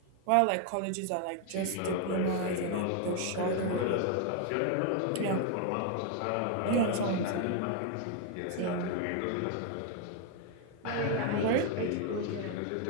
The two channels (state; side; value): different; both; correlation 0.00